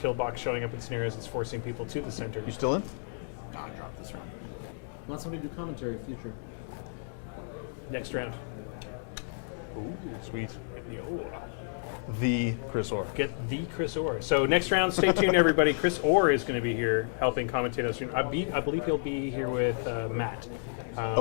showing up in scenarios, it's forcing people to the center. You still in? God, drop this round. Want somebody to do commentary future? Next round. Ooh, sweet. Yo. The Chris Orr. Get the Chris Orr. So next round, stay tuned, everybody. Chris Orr is going to be here helping commentate us. I believe he'll be here with Matt.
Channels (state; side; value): silent; right; digital silence